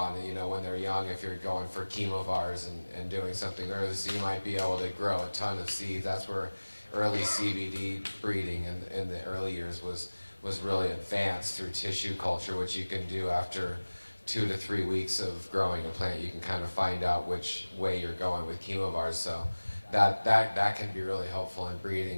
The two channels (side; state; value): both; inverted; correlation -1.00